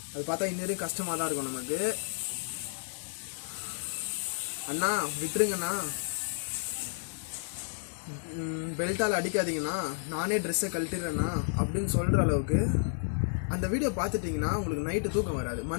அது பார்த்தா இன்னும் கஷ்டமாக தான் இருக்கும் நமக்கு. அண்ணா விட்டுருங்கண்ணா, பெல்ட்டால் அடிக்காதீங்கண்ணா, நானே ட்ரெஸ்ஸை கழட்டிடுறேண்ணா அப்படின்னு சொல்கிற அளவுக்கு அந்த வீடியோ பார்த்துட்டிங்கன்னா உங்களுக்கு நைட்டு தூக்கம் வராது.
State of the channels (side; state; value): right; silent; digital silence